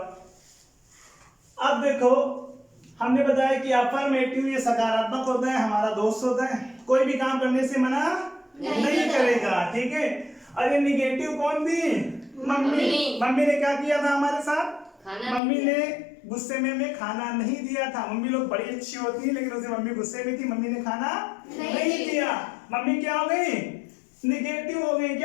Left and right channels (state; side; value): drops out; right; at 15.4 s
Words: अब देखो हमने बताया कि अफर्मेटिव ये सकारात्मक होता है, हमारा दोस्त होता है, कोई भी काम करने से मना नहीं करेगा। ठीक है, और ये निगेटिव कौन थी? मम्मी। मम्मी ने क्या किया था हमारे साथ? मम्मी ने गुस्से में हमें खाना नहीं दिया था। मम्मी लोग बड़ी अच्छी होती है, लेकिन उसे मम्मी गुस्से में थी, मम्मी ने खाना नहीं दिया। मम्मी क्या हो गई? निगेटिव हो गई।